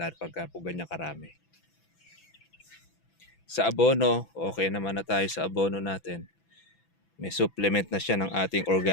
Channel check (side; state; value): right; late; 6.0 ms